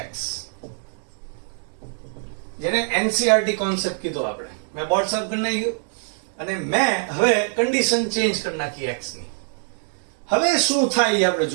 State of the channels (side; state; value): left; silent; 63 dB below the other